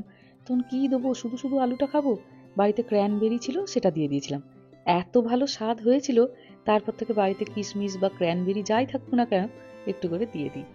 তখন কি দেবো, শুধু শুধু আলুটা খাবো, বাড়িতে ক্র্যানবেরি ছিল সেটা দিয়ে দিয়েছিলাম। এত ভালো স্বাদ হয়েছিল, তারপর থেকে বাড়িতে কিশমিশ বা ক্র্যানবেরি যাই থাকুক না কেন একটু করে দিয়ে দিই।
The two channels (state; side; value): identical; both; correlation 1.00